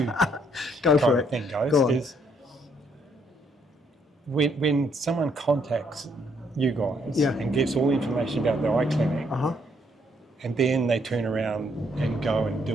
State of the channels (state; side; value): normal; both; correlation 0.70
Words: go for it. Thing goes go on. Is when someone contacts you guys and gets all the information about the eye clinic, and then they turn around and go and